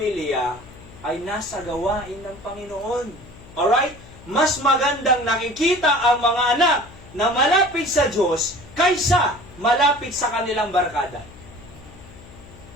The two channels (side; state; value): left; noise; hum, 20 dB below the sound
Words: ay nasa gawain ng Panginoon. Alright? Mas magandang nakikita ang mga anak na malapit sa Diyos kaysa malapit sa kanilang barkada.